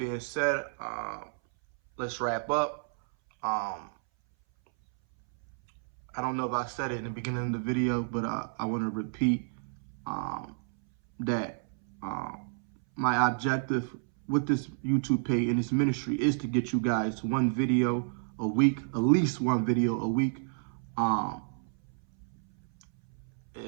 said, let's wrap up. I don't know if I said it in the beginning of the video, but I want to repeat that my objective with this YouTube page and this ministry is to get you guys one video a week, at least one video a week.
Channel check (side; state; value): left; silent; 58 dB below the other